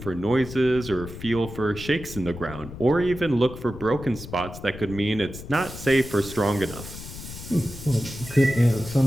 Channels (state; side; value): noise; left; rumble, 12 dB below the sound